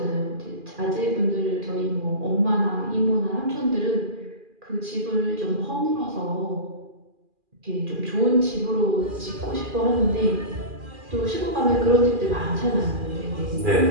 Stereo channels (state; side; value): late; left; 2.4 ms